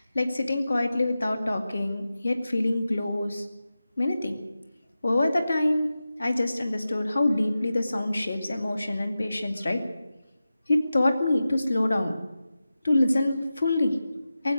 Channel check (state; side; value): inverted; both; correlation -0.93